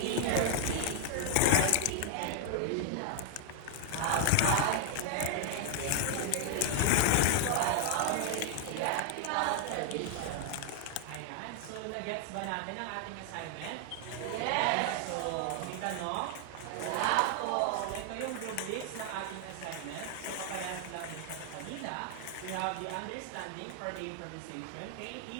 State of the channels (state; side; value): different; both; correlation 0.00